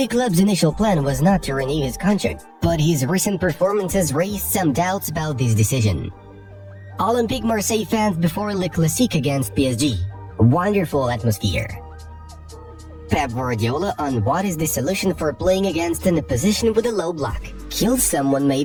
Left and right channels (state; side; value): identical; both; correlation 1.00